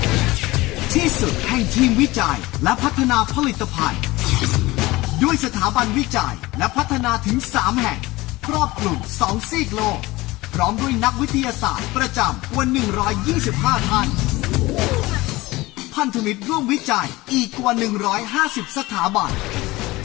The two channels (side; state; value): right; quieter; 20.1 dB